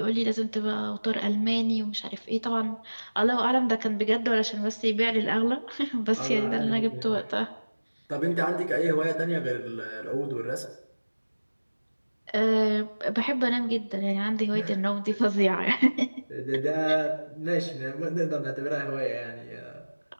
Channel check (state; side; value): inverted; both; correlation -1.00